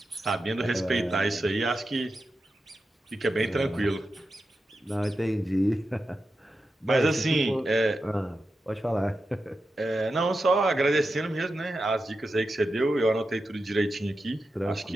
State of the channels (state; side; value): normal; both; correlation 0.90